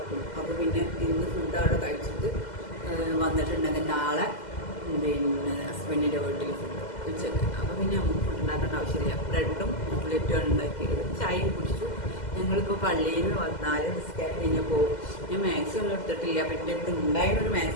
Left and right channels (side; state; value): right; late; 2.0 ms